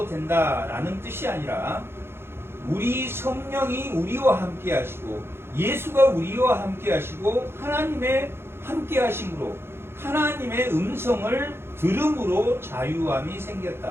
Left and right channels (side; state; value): left; late; 0.12 ms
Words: 된다라는 뜻이 아니라 우리 성령이 우리와 함께 하시고 예수가 우리와 함께 하시고 하나님의 함께 하심으로 하나님의 음성을 들음으로 자유함이